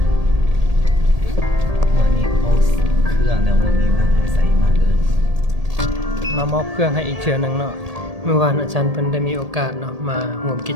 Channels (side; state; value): left; late; 1.8 ms